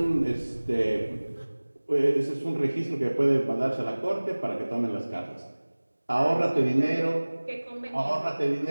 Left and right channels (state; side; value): inverted; both; correlation -1.00